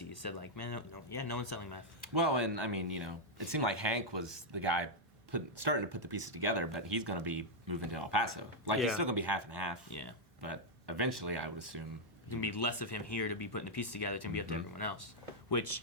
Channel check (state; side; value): normal; both; correlation -0.03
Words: said like, man, no one's selling meth. Well, and I mean, it seemed like Hank was the guy starting to put the pieces together, but he's going to be moving to El Paso. Like, he's still going to be half and half. Yeah. But eventually, I would assume... There's going to be less of him here to be putting the pieces together. It's going to be up to everyone else.